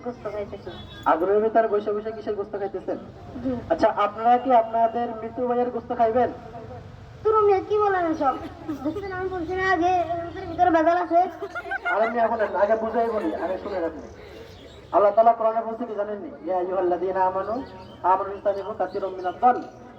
গোস্ত খাইতেছি। আগুনের ভিতরে বসে বসে কিসের গোস্ত খাইতেছেন? আচ্ছা আপনারা কি আপনাদের মৃত্যু ভাইয়ের গোস্ত খাইবেন? তুমি কি বলেন সব দেখছেন আমি বলছি না আগে ভিতরে বেজাল আছে আমি এখন আগে বুঝাই বলি আগে শুনে রাখুন আল্লাহ তাআলা কোরআনে বলছে কি জানেন নি ইয়া আইয়ুহাল্লাযীনা আমানু ইসতানিবু কাসীরাম মিনাদ যান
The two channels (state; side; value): identical; both; correlation 1.00